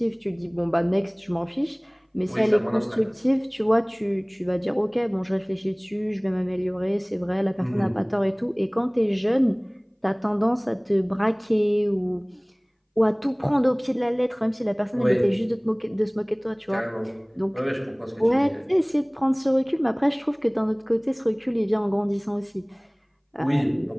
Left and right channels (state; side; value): identical; both; correlation 1.00